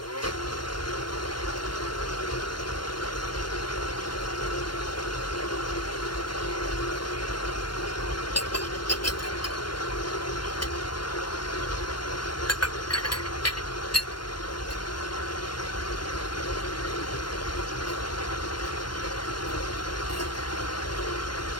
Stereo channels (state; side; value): late; right; 0.71 ms